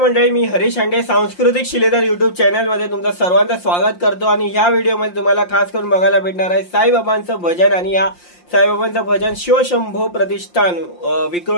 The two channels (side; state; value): right; late; 5.7 ms